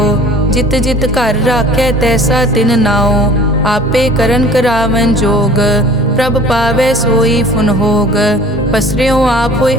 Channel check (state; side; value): normal; both; correlation 0.46